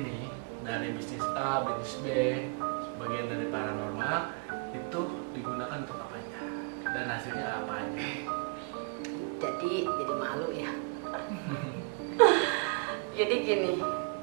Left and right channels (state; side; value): quieter; left; 33.2 dB